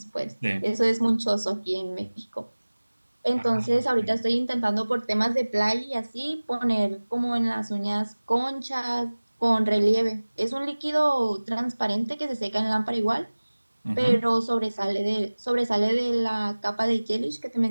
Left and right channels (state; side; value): inverted; both; correlation -1.00